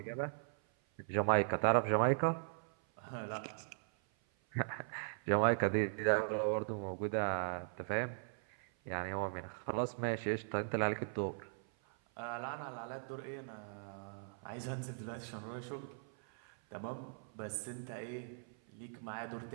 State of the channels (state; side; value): silent; left; 51 dB below the other